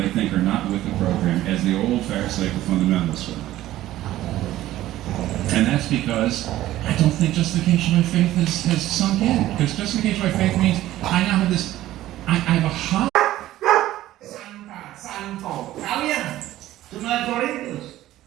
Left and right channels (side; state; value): left; quieter; 14.7 dB